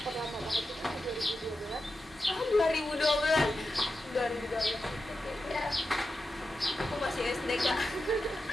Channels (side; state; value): both; normal; correlation 0.90